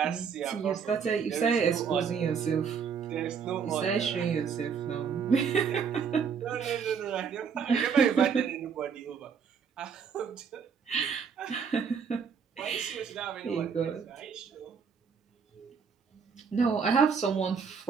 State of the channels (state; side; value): quieter; left; 6.3 dB